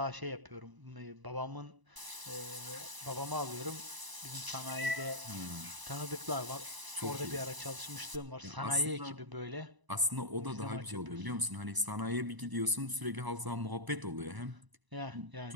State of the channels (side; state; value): left; late; 1.0 ms